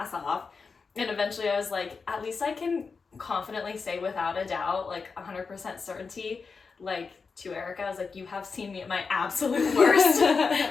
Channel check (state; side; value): quieter; right; 4.9 dB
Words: off. And eventually I was like, at least I can confidently say without a doubt, like 100% certainty, like to Erica, I was like, you have seen me at my absolute worst